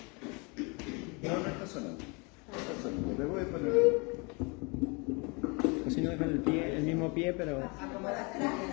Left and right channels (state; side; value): quieter; right; 30.5 dB